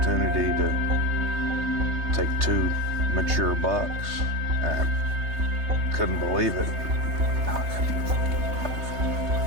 to take 2 mature bucks. I couldn't believe it.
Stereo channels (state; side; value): late; left; 3.3 ms